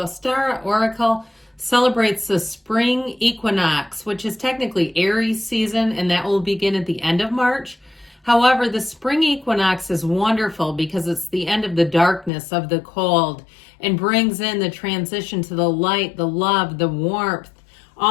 Oracle celebrates the spring equinox, which is technically Aries season, and that will begin at the end of March. However, the spring equinox is wonderful because it's the end of the darkness, of the cold, and brings in the transition to the light, the love, the warmth,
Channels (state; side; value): drops out; right; at 12.3 s